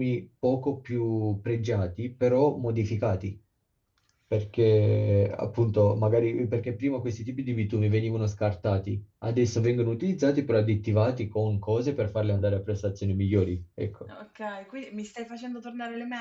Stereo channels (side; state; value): both; identical; correlation 1.00